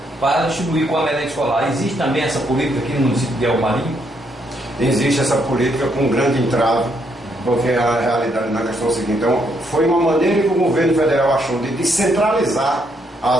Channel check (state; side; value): normal; both; correlation 0.74